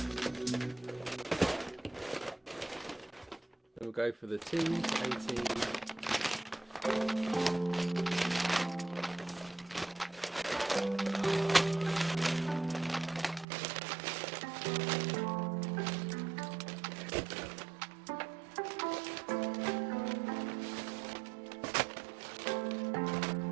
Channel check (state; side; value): drops out; left; at 13.5 s